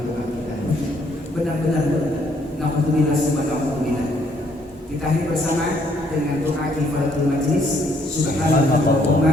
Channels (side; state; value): both; normal; correlation 0.68